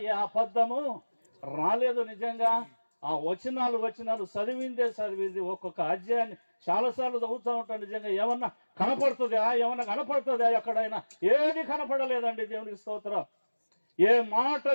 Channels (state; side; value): inverted; both; correlation -1.00